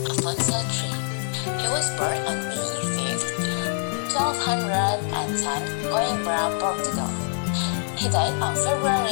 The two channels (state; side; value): silent; right; digital silence